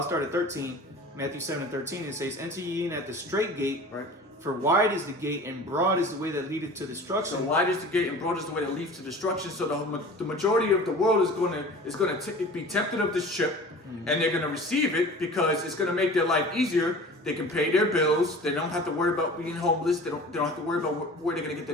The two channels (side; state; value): both; normal; correlation 0.41